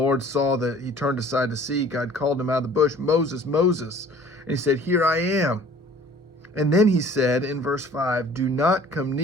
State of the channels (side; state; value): both; normal; correlation 0.50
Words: saw that he turned aside to see, God called him out of the bush, "Moses, Moses." And he said, "Here I am." And then he said in verse 5, "Do not come